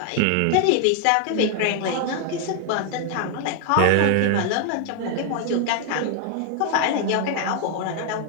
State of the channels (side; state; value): both; different; correlation 0.00